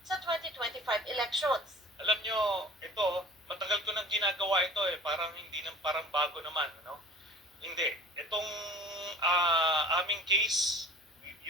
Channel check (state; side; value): normal; both; correlation 0.45